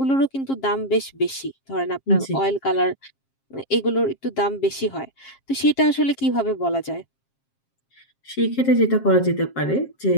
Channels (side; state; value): right; late; 7.4 ms